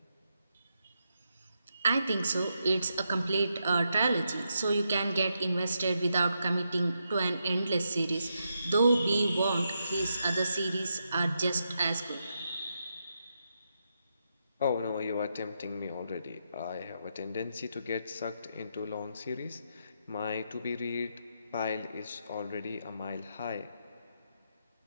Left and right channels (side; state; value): both; inverted; correlation -0.83